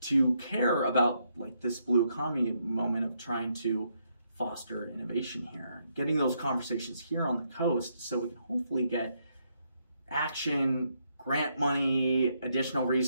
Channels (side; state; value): both; inverted; correlation -0.76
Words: care about this blue economy moment of trying to foster innovation here, getting those conversations here on the coast so we can hopefully get action, grant money, additional